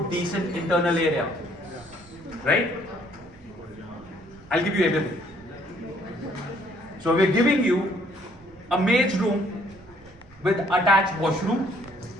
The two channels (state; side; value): noise; right; rumble, 25 dB below the sound